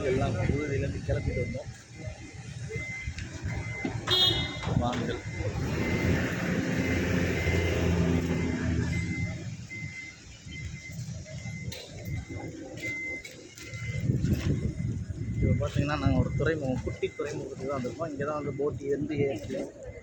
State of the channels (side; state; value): both; identical; correlation 1.00